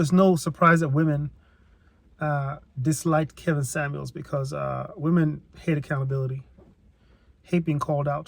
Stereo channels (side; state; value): both; identical; correlation 1.00